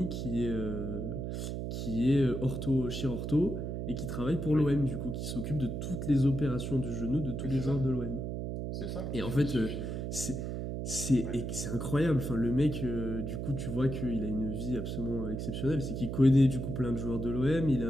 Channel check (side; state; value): right; noise; hum, 4 dB below the sound